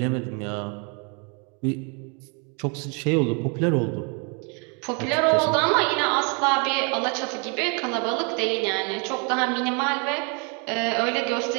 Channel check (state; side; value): quieter; left; 35.0 dB